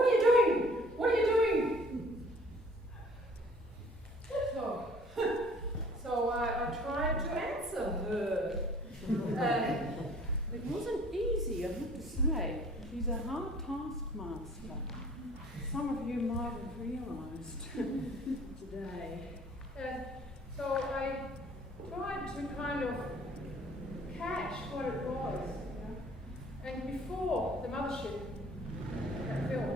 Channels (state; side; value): normal; both; correlation 0.53